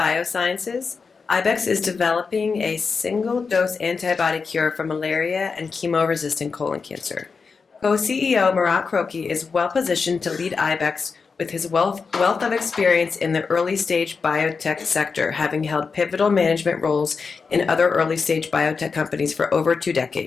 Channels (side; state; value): right; quieter; 5.0 dB